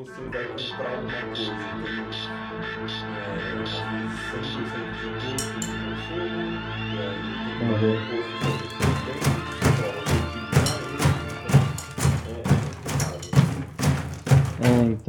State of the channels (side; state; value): both; identical; correlation 1.00